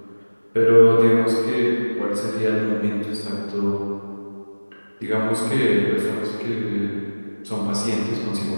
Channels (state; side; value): inverted; both; correlation -1.00